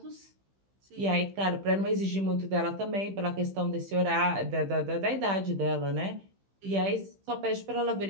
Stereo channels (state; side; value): late; left; 15 ms